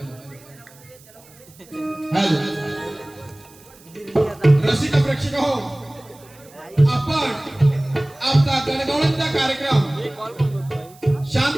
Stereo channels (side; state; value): right; noise; hiss, 25 dB below the sound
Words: रसिक प्रेक्षक हो, आपण आमचा गणगौळणचा कार्यक्रम